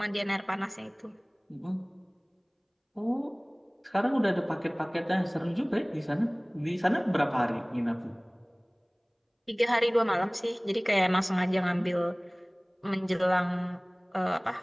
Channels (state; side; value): identical; both; correlation 1.00